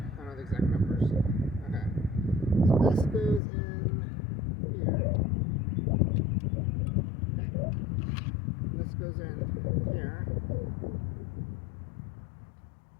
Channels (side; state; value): right; drops out; at 3.4 s